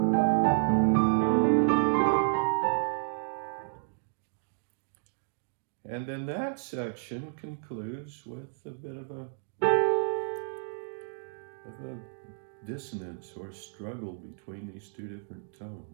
And then that section concludes with a bit of a dissonance or struggle between these two different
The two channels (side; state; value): left; silent; digital silence